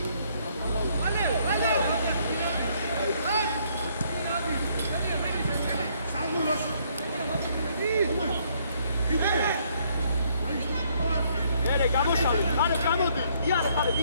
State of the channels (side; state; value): both; inverted; correlation -0.68